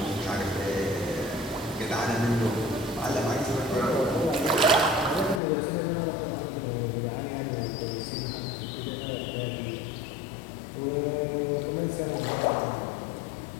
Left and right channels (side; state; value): right; drops out; at 5.4 s